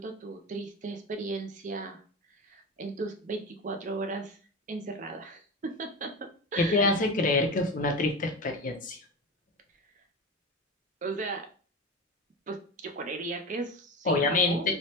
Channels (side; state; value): both; normal; correlation 0.24